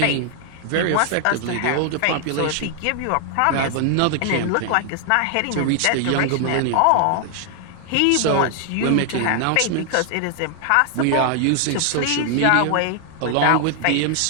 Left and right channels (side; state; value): both; different; correlation 0.00